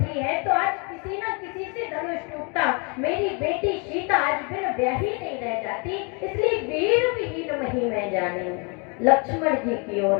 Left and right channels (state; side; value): quieter; right; 33.6 dB